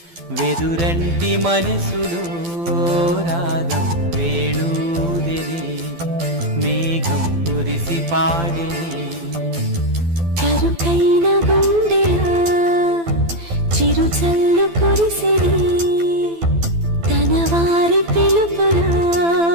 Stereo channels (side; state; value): left; late; 12 ms